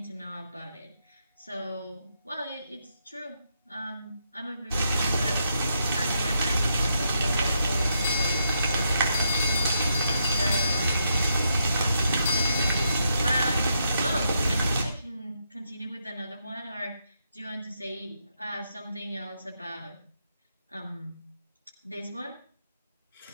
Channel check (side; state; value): both; inverted; correlation -0.79